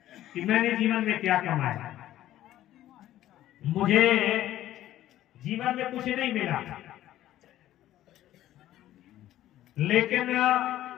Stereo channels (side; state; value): right; quieter; 13.5 dB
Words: कि मैंने जीवन में क्या कमाया। मुझे जीवन में कुछ नहीं मिला, लेकिन